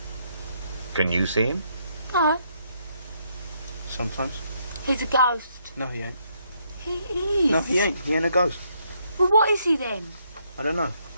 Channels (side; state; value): both; inverted; correlation -0.73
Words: Can you see him? No. Sometimes. He's a ghost. No, he ain't. He is. No, he ain't. He ain't a ghost. Well, what is he then? I don't know.